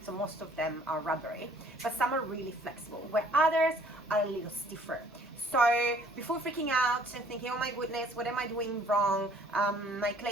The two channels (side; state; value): both; normal; correlation 0.58